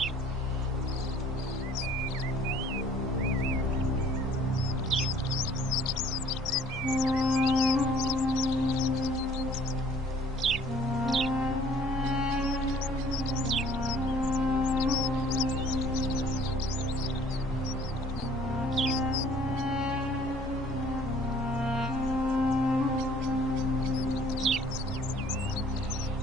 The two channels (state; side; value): normal; both; correlation 0.55